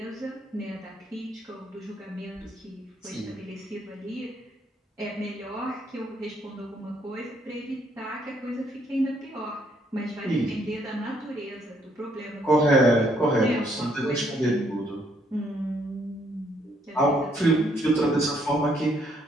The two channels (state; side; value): normal; both; correlation 0.70